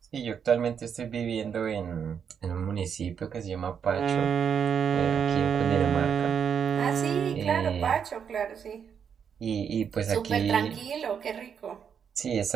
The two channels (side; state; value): left; quieter; 7.4 dB